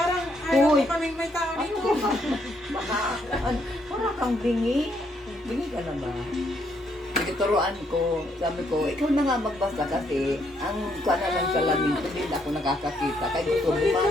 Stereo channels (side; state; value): both; normal; correlation 0.73